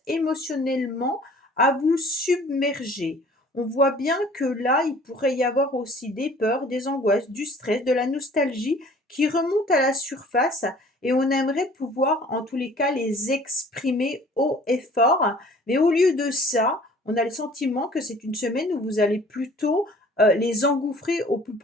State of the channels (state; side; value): normal; both; correlation 0.51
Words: émotionnellement à vous submerger. On voit bien que là, il pourrait y avoir aussi des peurs, des angoisses, du stress, de la nostalgie qui remontent à la surface et on aimerait pouvoir, en tous les cas, les exprimer haut et fort. Mais au lieu de ça, on a le sentiment que c'est une semaine où vous allez plutôt les engouffrer au plus